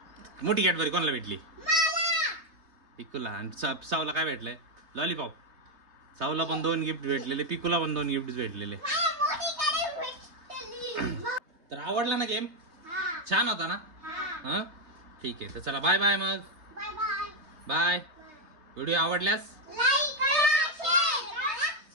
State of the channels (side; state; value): left; late; 3.3 ms